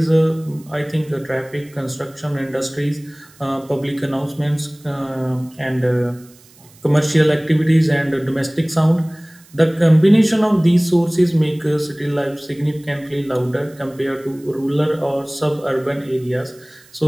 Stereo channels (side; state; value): right; noise; hiss, 27 dB below the sound